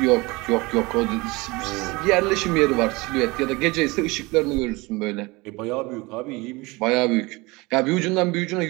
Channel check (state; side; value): quieter; left; 24.0 dB